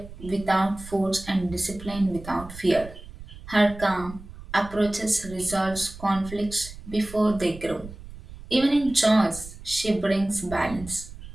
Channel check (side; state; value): right; noise; rumble, 15 dB below the sound